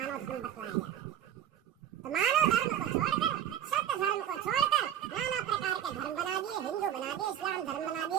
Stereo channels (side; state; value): left; quieter; 10.3 dB